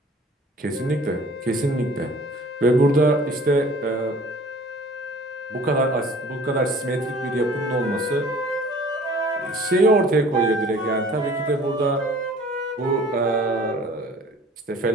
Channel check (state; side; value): normal; both; correlation 0.49